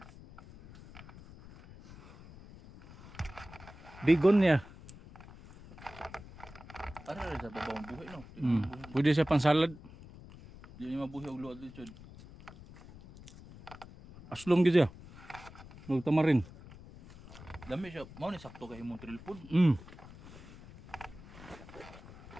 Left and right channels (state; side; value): noise; left; rumble, 18 dB below the sound